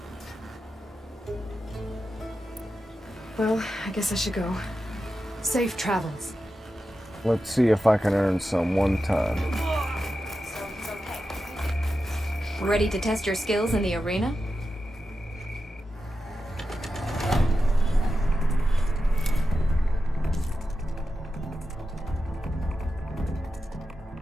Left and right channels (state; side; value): normal; both; correlation 0.90